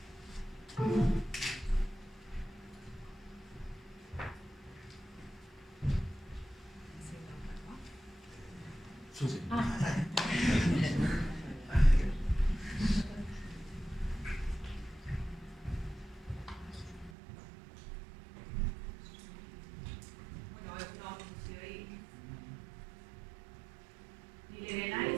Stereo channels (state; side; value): drops out; left; at 17.1 s